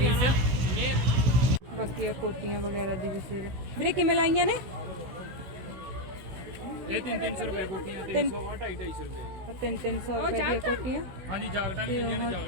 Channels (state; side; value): late; left; 16 ms